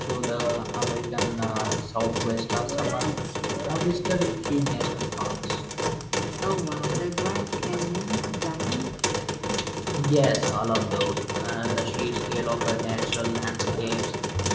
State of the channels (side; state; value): both; identical; correlation 1.00